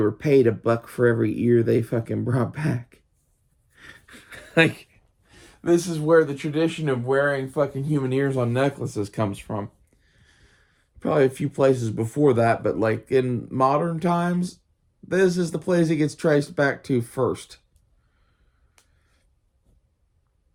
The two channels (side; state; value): both; identical; correlation 1.00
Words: paid $1 for every ear they fucking brought back. Like, this is where the tradition of wearing fucking human ears on necklaces comes from. Probably a few places before that, but like in modern times, this is the place it gets traced back to first.